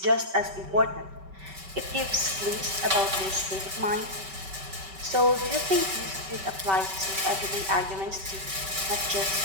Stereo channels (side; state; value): left; late; 5.2 ms